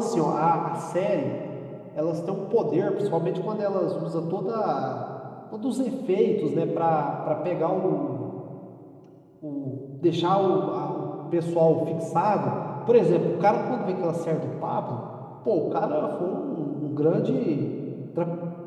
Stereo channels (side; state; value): both; identical; correlation 1.00